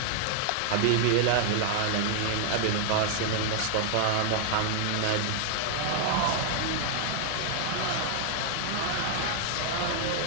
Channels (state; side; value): different; both; correlation 0.00